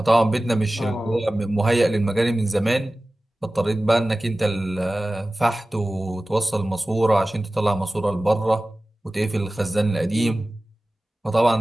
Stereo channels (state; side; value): normal; both; correlation 0.97